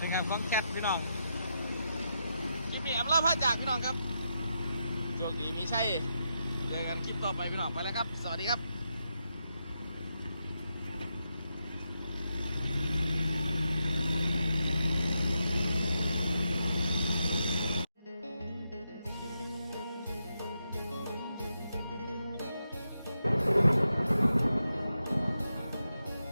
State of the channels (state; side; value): inverted; both; correlation -0.84